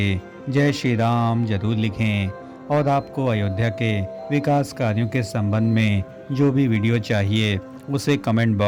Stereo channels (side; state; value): both; identical; correlation 1.00